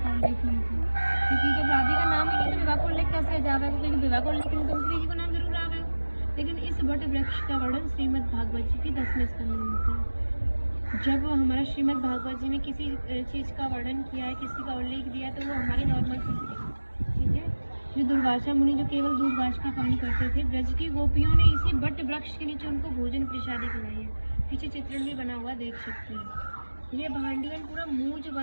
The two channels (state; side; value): inverted; both; correlation -1.00